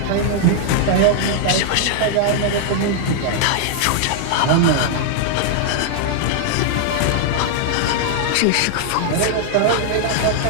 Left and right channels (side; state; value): both; different; correlation 0.00